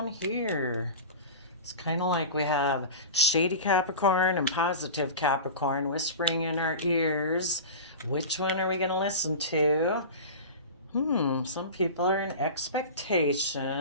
here. It's kind of like we have shady Capricorn and positive Capricorn whispering in our ears. Which one are we going to listen to? Some people are in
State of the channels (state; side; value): inverted; both; correlation -0.30